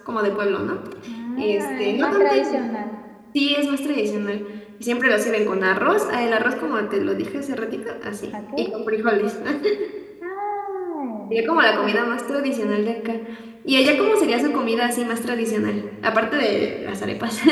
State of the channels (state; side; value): identical; both; correlation 1.00